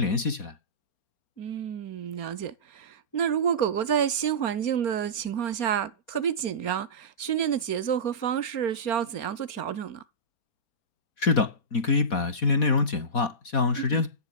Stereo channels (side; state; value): right; late; 4.3 ms